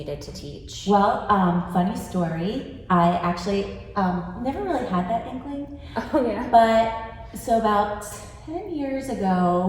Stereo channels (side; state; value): both; identical; correlation 1.00